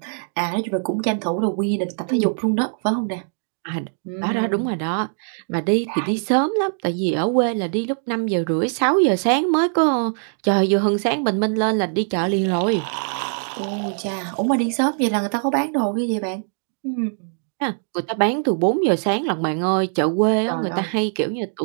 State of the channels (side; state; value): left; silent; digital silence